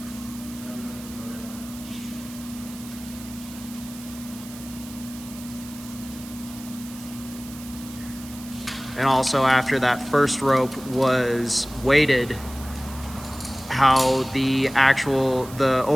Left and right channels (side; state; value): right; noise; hiss, 16 dB below the sound